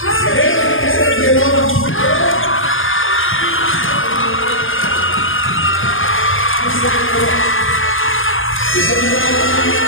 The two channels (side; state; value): right; late; 0.59 ms